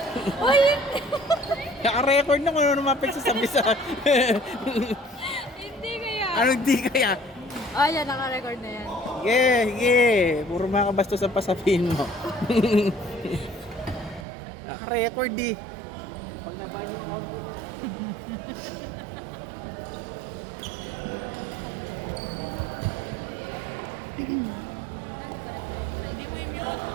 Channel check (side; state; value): left; drops out; at 14.2 s